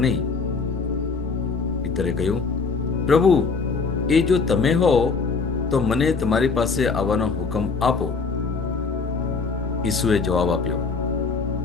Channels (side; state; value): right; quieter; 4.6 dB